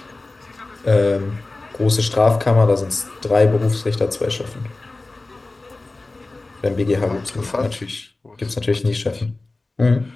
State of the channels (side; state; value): right; quieter; 3.2 dB